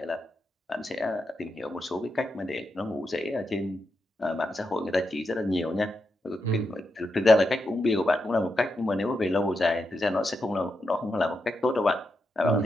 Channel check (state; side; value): normal; both; correlation 0.85